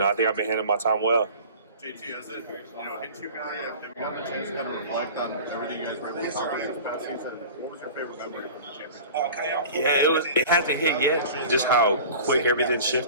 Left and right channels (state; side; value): inverted; both; correlation -0.40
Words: think I've been handling my time well. JT, as a hit you guy, have you gotten a chance to kind of reflect on everything you guys were able to accomplish this past season? What was your favorite memory from the championship? Yeah, it hasn't hit yet, just how quick everything